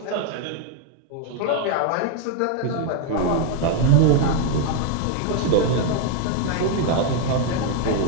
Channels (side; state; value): both; different; correlation 0.01